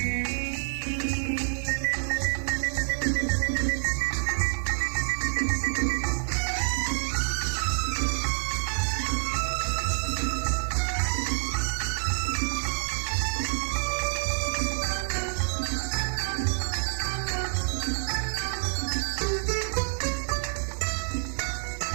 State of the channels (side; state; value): left; silent; 60 dB below the other